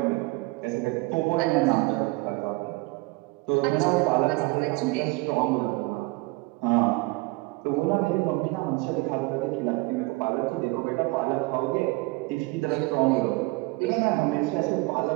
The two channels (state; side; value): quieter; left; 23.7 dB